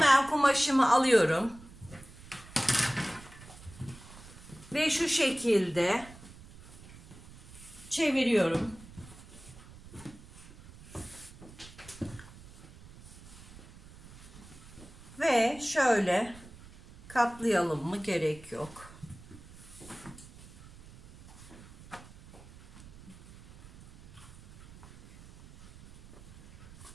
kumaşımı alıyorum ve şu şekilde çeviriyorum. Ve şöyle katlayalım mı, gerek yok.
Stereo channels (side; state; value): right; noise; rumble, 19 dB below the sound